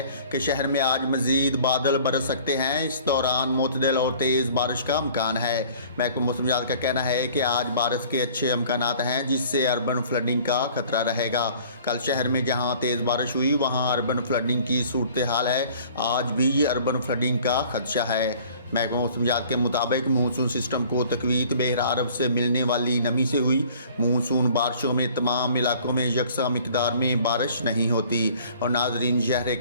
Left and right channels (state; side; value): inverted; both; correlation -0.51